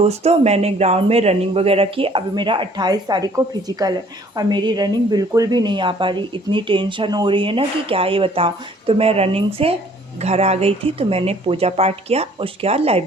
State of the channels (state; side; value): normal; both; correlation 0.57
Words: मैंने ग्राउंड में रनिंग वगैरह की। अभी मेरा 28 तारीख को फिजिकल है और मेरी रनिंग बिल्कुल भी नहीं आ पा रही। इतनी टेंशन हो रही है ना कि क्या ही बताऊं। तो मैं रनिंग से घर आ गई थी, तो मैंने पूजा पाठ किया। उसके बाद